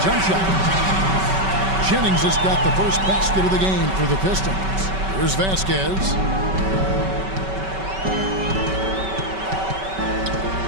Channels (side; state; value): left; late; 5.2 ms